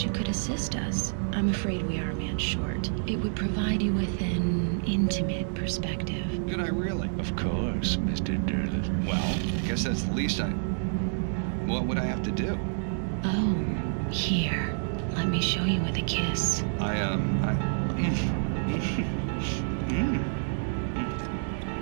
you could assist us. I'm afraid we are a man short. It would provide you with an intimate perspective. Could I really? Of course, Mr. Derleth. Well, I guess that's the least I... What would I have to do? Oh, here. Let me show you with a kiss.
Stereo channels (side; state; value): left; silent; digital silence